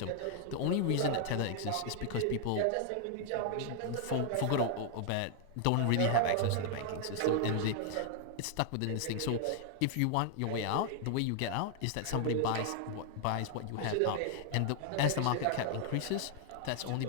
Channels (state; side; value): different; both; correlation 0.00